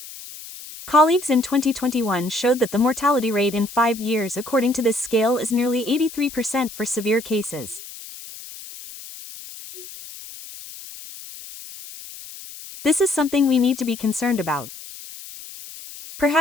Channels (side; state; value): left; noise; hiss, 15 dB below the sound